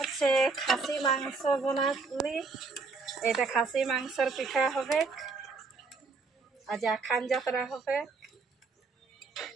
খাসি মাংস বানালি। এটা খাসি মাংসের পিঠা হবে। আজ আখান যাত্রা হবে।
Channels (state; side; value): quieter; left; 4.2 dB